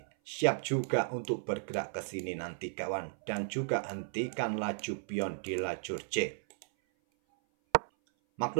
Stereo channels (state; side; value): silent; left; 55 dB below the other